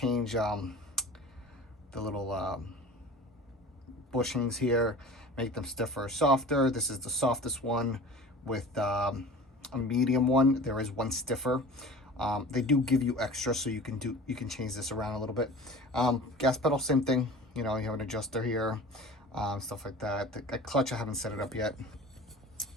the little bushings here, make them stiffer or softer. This is the softest one with a medium one. There is one stiffer. They do give you extra, so you can change this around a little bit. Gas pedal, same thing. You know, you have an adjuster here, stuff like that. The clutch, I haven't set it up yet.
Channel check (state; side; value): normal; both; correlation 0.39